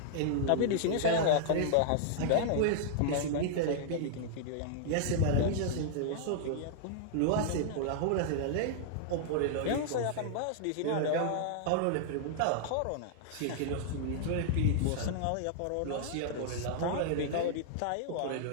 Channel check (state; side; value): different; both; correlation -0.01